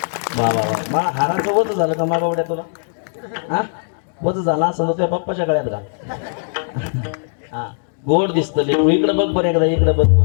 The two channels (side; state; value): right; silent; digital silence